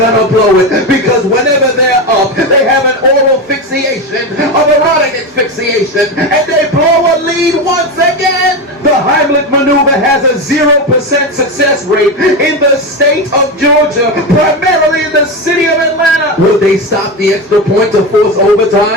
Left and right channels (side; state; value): both; normal; correlation 0.17